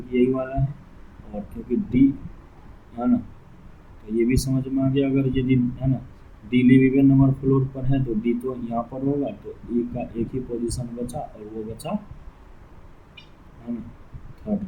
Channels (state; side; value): identical; both; correlation 1.00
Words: यही वाला है, और क्योंकि D है ना, तो ये भी समझ में आ गया। अगर यदि है ना D live even number floor पर है तो D तो यहाँ पर होगा, तो E का एक ही पोजीशन बचा, और वो बचा है ना थर्ड